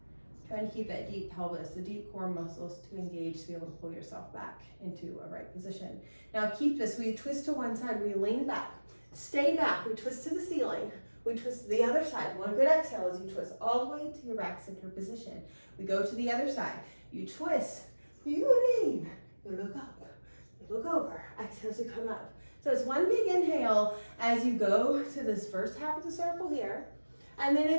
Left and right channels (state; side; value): inverted; both; correlation -1.00